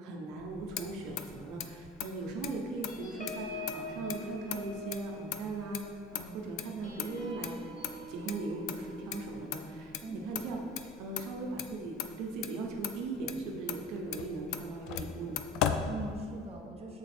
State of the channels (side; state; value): both; normal; correlation 0.39